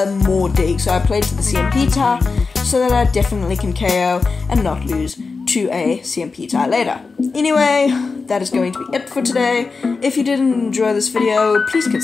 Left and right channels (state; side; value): quieter; right; 4.4 dB